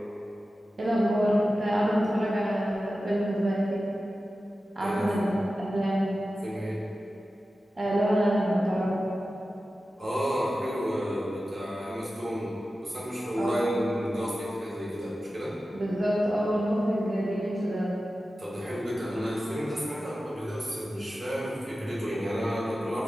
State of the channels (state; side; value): normal; both; correlation 0.94